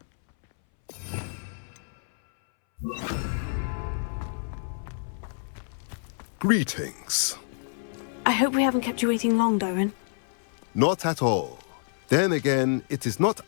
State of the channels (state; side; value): silent; right; 60 dB below the other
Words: Greetings. I hope we haven't kept you waiting long, Doran. Not at all. Then again, it is not